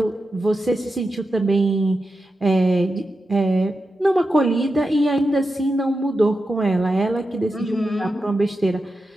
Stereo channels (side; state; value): both; normal; correlation 0.90